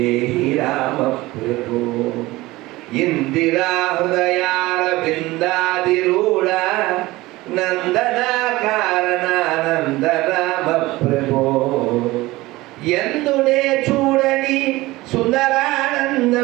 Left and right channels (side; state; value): left; quieter; 19.4 dB